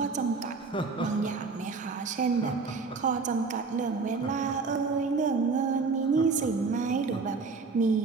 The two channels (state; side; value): quieter; left; 4.4 dB